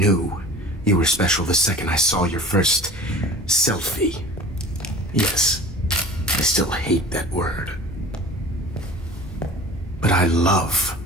you were special the second I saw your first selfie. Yes, I still hate that word. But I love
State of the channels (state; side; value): normal; both; correlation 0.42